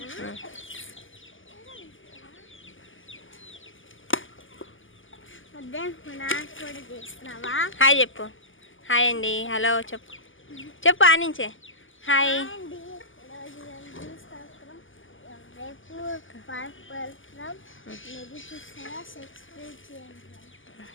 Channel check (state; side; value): late; right; 0.58 ms